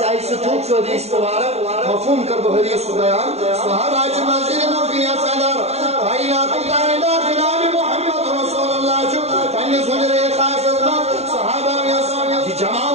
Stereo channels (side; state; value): left; late; 0.31 ms